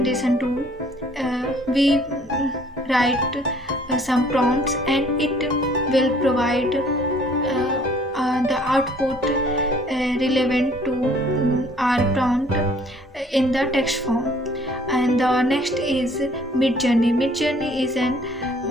tool. We write some prompts and it will provide the output relevant to our prompt in the text form. And the next is Midjourney. Midjourney is an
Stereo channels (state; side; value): normal; both; correlation 0.57